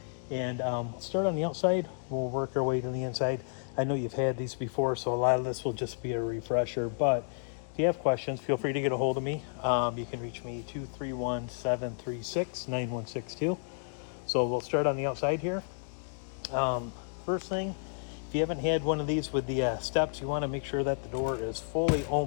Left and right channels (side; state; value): right; silent; digital silence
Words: And start on the outside, we'll work our way to the inside. I know you've had these before, so a lot of this will just be a refresher, but if you have questions, feel free to get a hold of me. You can reach me 231-736-9162. So we'll start on the outside here. First thing, if you haven't had one of these with the steps, you want to make sure that the door is fully